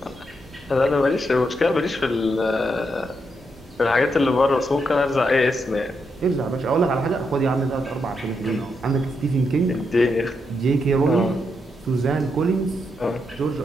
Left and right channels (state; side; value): normal; both; correlation 0.81